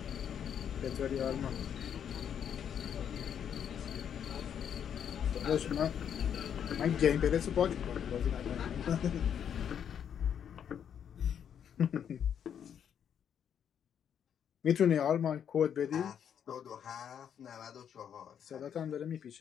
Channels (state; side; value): quieter; right; 8.5 dB